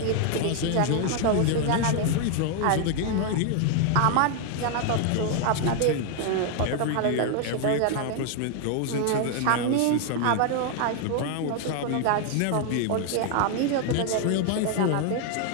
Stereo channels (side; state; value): both; different; correlation 0.00